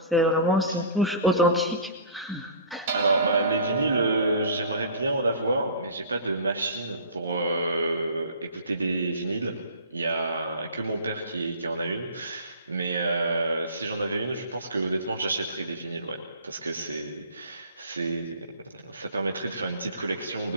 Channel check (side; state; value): both; inverted; correlation -0.42